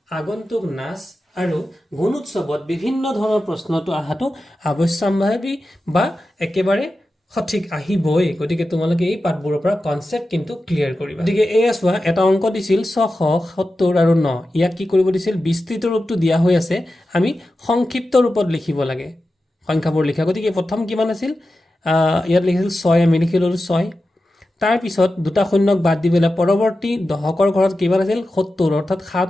আগন্তুক নাচ আৰু গুণোৎসৱত বিভিন্ন ধৰণৰ প্ৰশ্নটো আহাটো আৱশ্যম্ভাৱী বা একেবাৰে সঠিক আহিবই গতিকে তোমালোকে এই পাঠবোৰৰ পৰা কনসেপ্ট কিন্তু ক্লিয়াৰ কৰিবা গতিকে এয়া চোৱা এটা অংক দিছিল 670 আৰু 9 ইয়াক কি কৰিব দিছিল বিস্তৃত ৰূপটো দিয়া হৈ আছে আমি সংক্ষিপ্ত ৰূপত লিখিব লাগে সংখ্যাবোৰ লিখা গতিকে প্ৰথম কিমান আছিল ইয়াত লিখিছিল 6 আমি লিখি ল'লোঁ 6 তাৰপিছত দুটা শূন্যক বাদ দি পেলাই পৰৱৰ্তী দশকৰ ঘৰত কিমান আছিল 70 অৰ্থাৎ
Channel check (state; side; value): normal; both; correlation 0.92